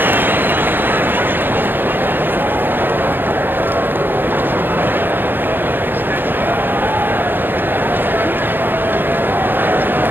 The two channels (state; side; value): late; left; 0.096 ms